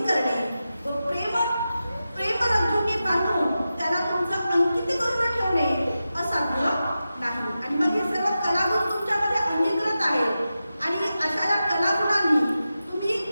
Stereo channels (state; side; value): inverted; both; correlation -0.92